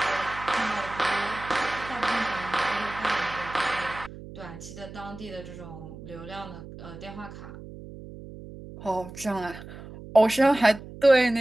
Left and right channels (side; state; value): right; noise; hum, 14 dB below the sound